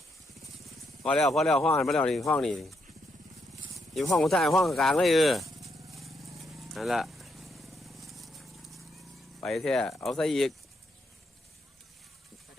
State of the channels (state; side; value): normal; both; correlation 0.78